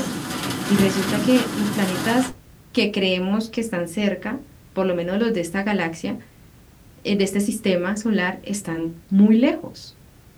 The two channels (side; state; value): both; identical; correlation 1.00